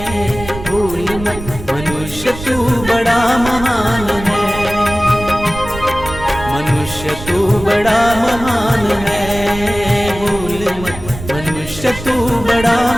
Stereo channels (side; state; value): right; noise; rumble, 11 dB below the sound